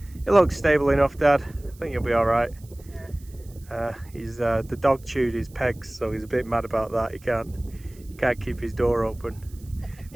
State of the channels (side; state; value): right; noise; hiss, 26 dB below the sound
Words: it looks stable enough, Dad. I think you'll be alright. Yeah. The dog chewed his pegs, so he's a bit mad about that. He can't keep his door open.